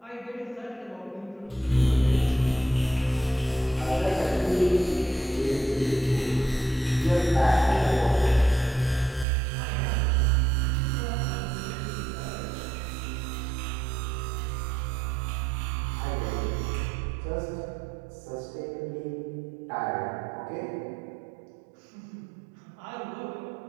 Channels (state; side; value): drops out; left; at 9.2 s